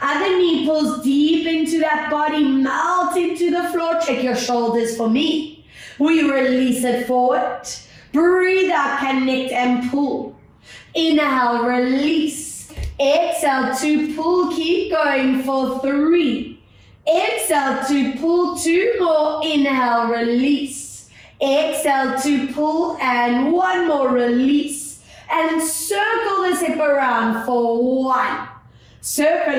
knee pulls deep into that body, melt into the floor. Check your shoulders for me. We release it forward. Breathe out, connect and pull. Inhale, release. Exhale to pull, keep going for 3. Exhale to pull, 2 more. Inhale, release. Exhale to pull and 1 more, release. And circle the zip around for 1.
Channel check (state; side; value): identical; both; correlation 1.00